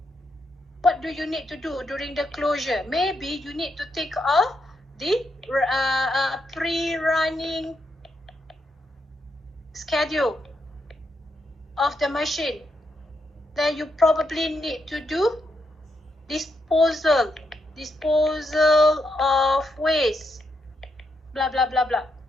What do you need to do during the closure? Maybe you need to take off the pre-running schedule of the machine. Then you probably need to do disposal of waste, blah, blah, blah, blah.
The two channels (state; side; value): normal; both; correlation 0.81